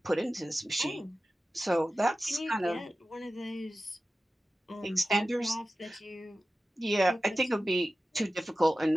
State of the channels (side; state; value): both; normal; correlation 0.95